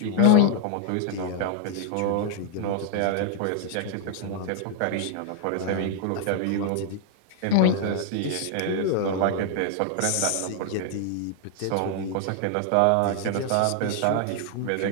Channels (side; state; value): both; different; correlation 0.00